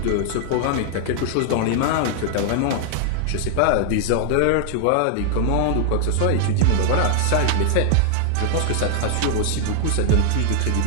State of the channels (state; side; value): different; both; correlation 0.00